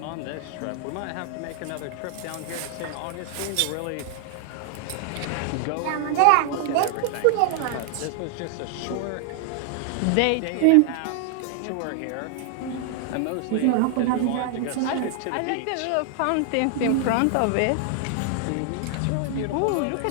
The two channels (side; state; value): both; different; correlation 0.00